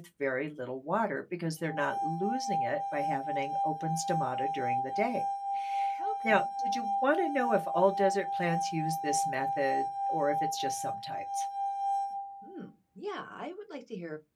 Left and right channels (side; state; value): both; identical; correlation 1.00